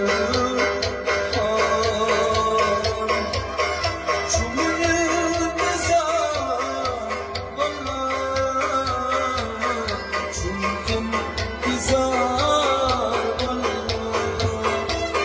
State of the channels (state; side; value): identical; both; correlation 1.00